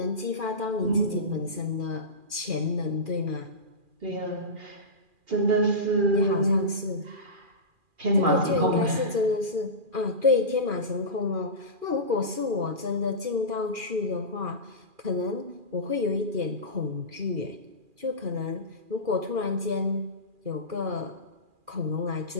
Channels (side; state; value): left; late; 2.4 ms